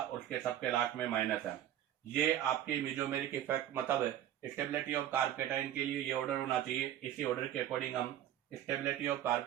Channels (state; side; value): quieter; left; 11.7 dB